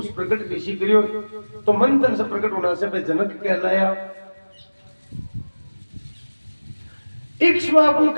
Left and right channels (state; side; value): inverted; both; correlation -1.00